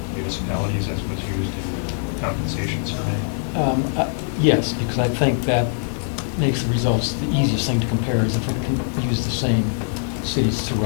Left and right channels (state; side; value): silent; right; 55 dB below the other